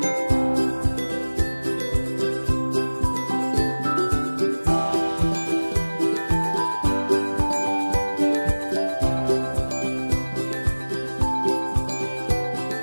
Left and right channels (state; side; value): inverted; both; correlation -1.00